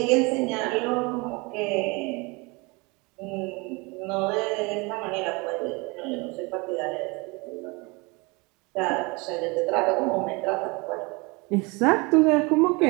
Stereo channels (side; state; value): left; quieter; 27.1 dB